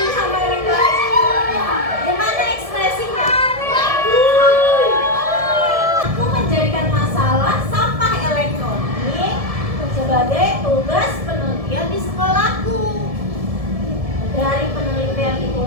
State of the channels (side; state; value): left; late; 1.7 ms